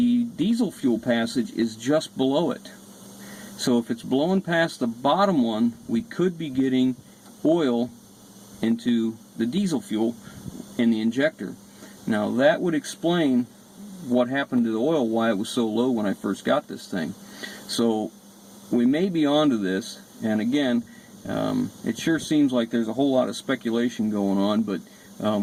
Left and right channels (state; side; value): identical; both; correlation 1.00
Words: diesel fuel passage is just below it. So if it's blowing past the bottom one, we could be getting oil into the diesel fuel in the injector. Now that would explain what happened to the oil, why it was so low when I first got this thing. So we may be onto this, and again, it sure seems like there's a whole lot of speculation going on, but